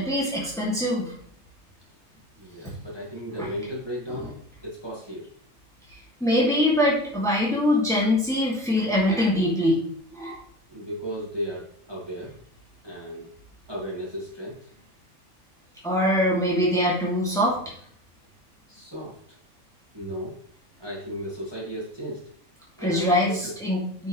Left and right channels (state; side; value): normal; both; correlation 0.33